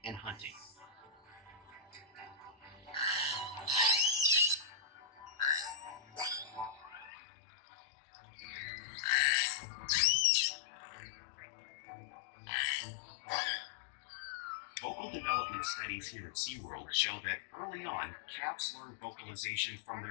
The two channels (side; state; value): right; drops out; at 7.1 s